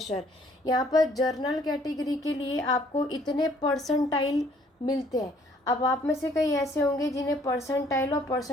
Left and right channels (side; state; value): both; normal; correlation 0.61